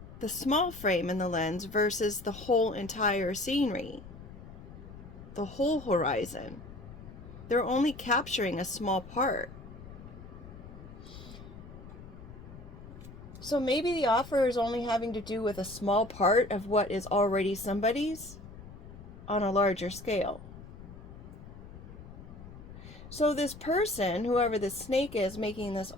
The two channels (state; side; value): noise; left; rumble, 15 dB below the sound